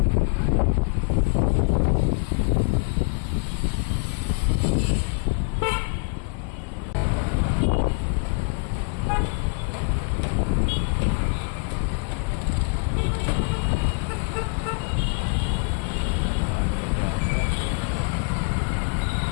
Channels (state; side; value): quieter; right; 34.4 dB